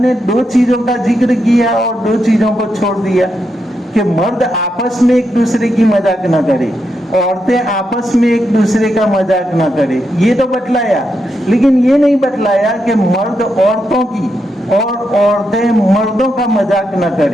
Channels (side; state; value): both; normal; correlation 0.83